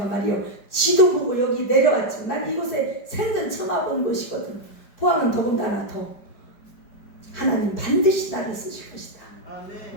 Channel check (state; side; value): late; right; 5.0 ms